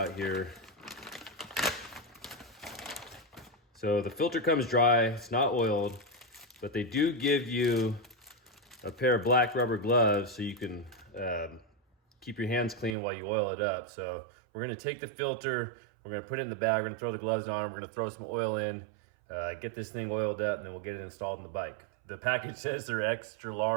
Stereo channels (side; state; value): left; drops out; at 13.0 s